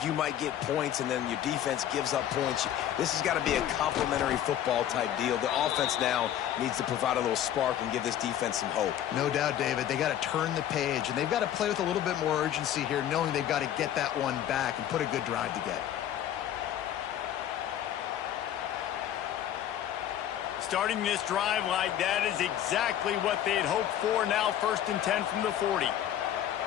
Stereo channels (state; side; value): quieter; right; 11.0 dB